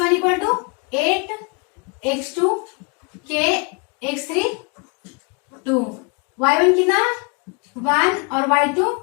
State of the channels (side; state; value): right; quieter; 32.7 dB